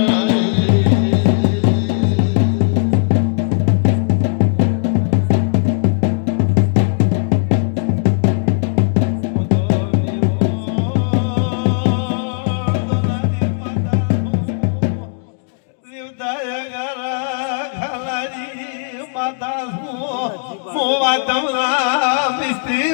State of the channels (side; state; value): right; silent; digital silence